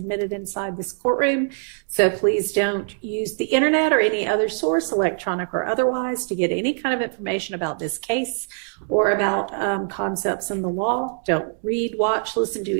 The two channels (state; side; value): silent; left; digital silence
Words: inside this courtroom. So please don't use the internet or any other source, electronic or otherwise, to get any kind of information about this case or about concepts in the law. Don't read, watch, listen